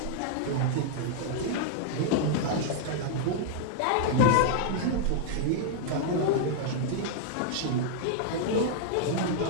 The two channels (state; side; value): different; both; correlation -0.01